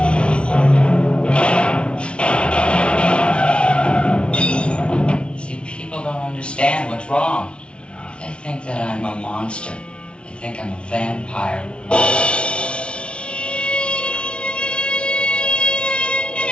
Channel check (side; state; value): right; late; 0.058 ms